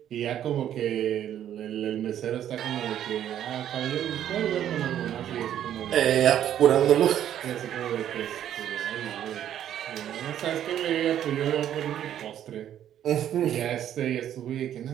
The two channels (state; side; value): quieter; left; 10.7 dB